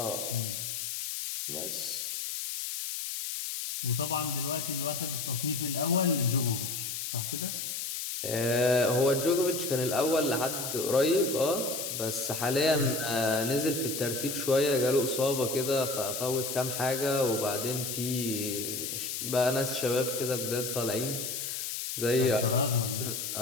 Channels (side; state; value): left; noise; hiss, 4 dB below the sound